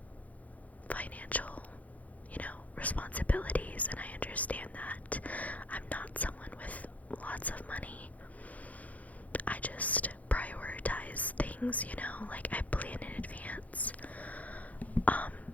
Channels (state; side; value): late; right; 0.073 ms